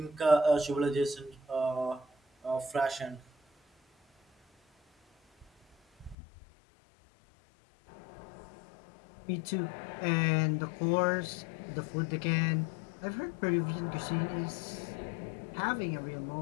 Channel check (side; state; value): right; drops out; at 6.2 s